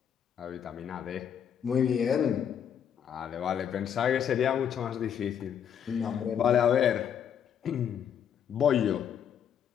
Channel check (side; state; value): right; quieter; 8.6 dB